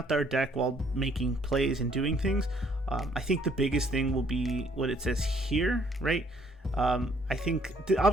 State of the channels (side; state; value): both; normal; correlation 0.64